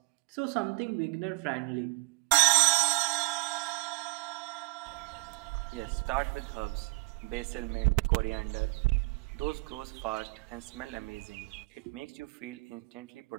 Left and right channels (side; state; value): left; quieter; 28.2 dB